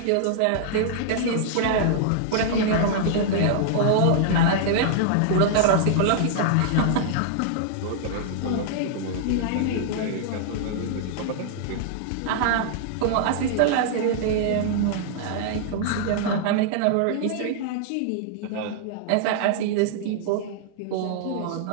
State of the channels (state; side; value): different; both; correlation -0.01